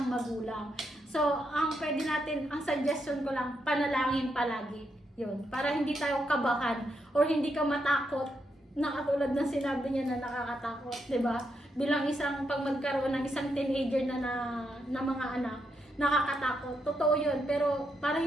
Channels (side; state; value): both; normal; correlation 0.81